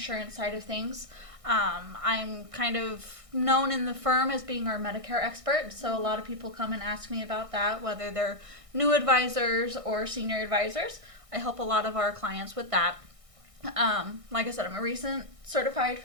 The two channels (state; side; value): late; left; 1.6 ms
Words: side of things. I'm kind of known in the firm as being our Medicare expert. So a lot of people come and ask me about that, whether they're new advisors or senior advisors. I help a lot of our clients with that. Like I said, I'm a recent certified